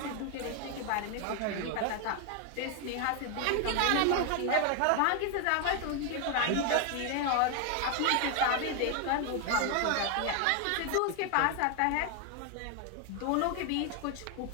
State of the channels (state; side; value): different; both; correlation 0.01